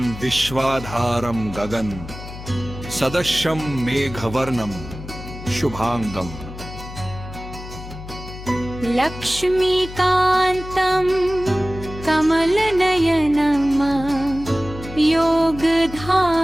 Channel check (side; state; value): left; noise; hum, 12 dB below the sound